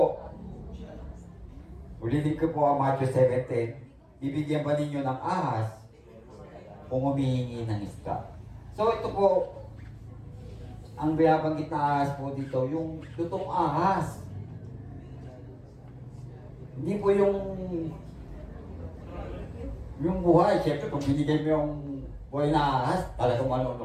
ulitin ko po ang Matthew 7:10, bibigyan ba ninyo ng ahas kung humihingi ng isda? So ito po, ang binabanggit na ahas po dito, yung lutong ahas. Hindi po yung buhay. Siyempre, kung binigay mo yung buhay na ahas, talagang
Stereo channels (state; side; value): identical; both; correlation 1.00